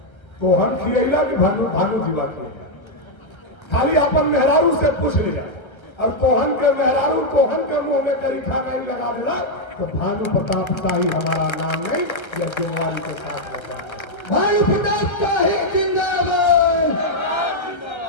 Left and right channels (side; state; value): right; late; 1.3 ms